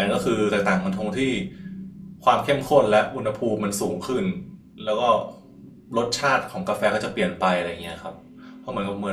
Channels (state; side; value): identical; both; correlation 1.00